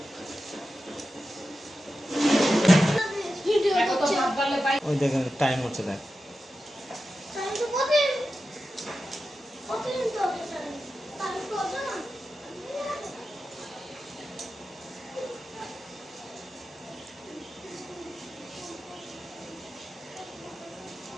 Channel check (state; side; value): normal; both; correlation 0.92